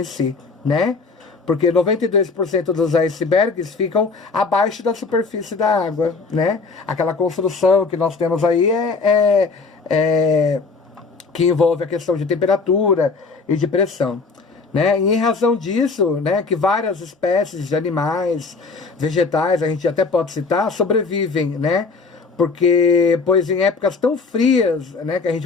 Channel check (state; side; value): quieter; right; 4.4 dB